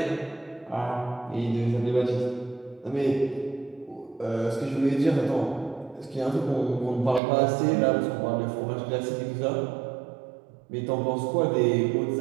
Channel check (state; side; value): drops out; left; at 7.2 s